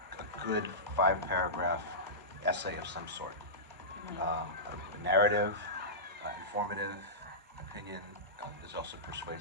good 5-paragraph essay of some sort. A narrative, informative, opinion. Is also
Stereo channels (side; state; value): both; normal; correlation -0.17